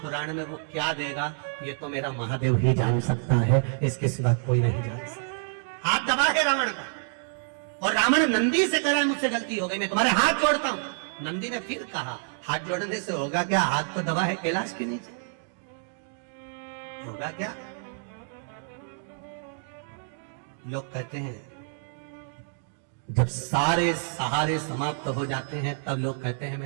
में वो क्या देगा, ये तो मेरा महादेव ही जान सकता है, इसके सिवा कोई नहीं जान सकता। हाथ दबा है रावण का, और रावण नंदी से कह रहा है मुझसे गलती हो गई, मैं तुम्हारे हाथ जोड़ता हूं। नंदी ने फिर कहा हाथ जोड़ने से होगा क्या? हाथ तो दबा है कैलाश के नीचे, होगा क्या? लोग कहते हैं जब सारे सहारे समाप्त हो जाते हैं तब लोग कहते हैं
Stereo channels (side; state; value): left; silent; digital silence